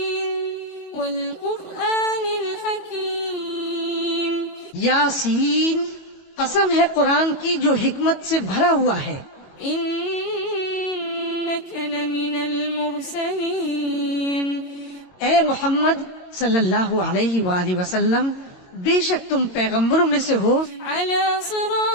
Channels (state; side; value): late; right; 22 ms